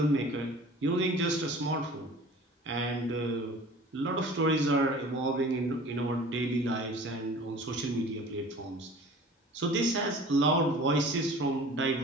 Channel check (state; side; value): normal; both; correlation 0.44